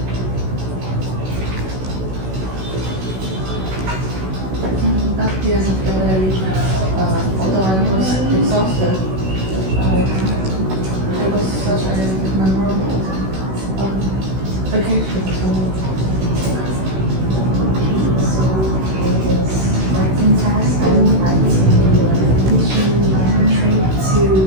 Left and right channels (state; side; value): late; left; 16 ms